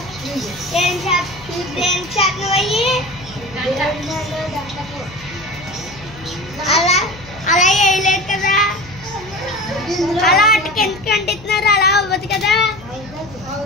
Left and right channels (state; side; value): noise; left; hum, 19 dB below the sound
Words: అలా అలా వేయలేదు కదా, అలా అటుకి ఎందుకు అంటున్నారు, అలా అవ్వదు కదా.